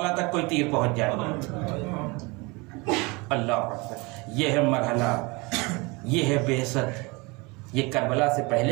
تک کوئی تیر پہنچ جائے. اللہ اکبر. یہ ہے مرحلہ، یہ ہے بعثت. یہ کربلا سے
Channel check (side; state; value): left; quieter; 26.4 dB